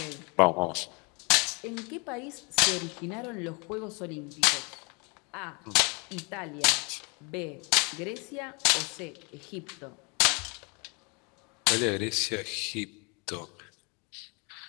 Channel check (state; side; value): quieter; right; 31.6 dB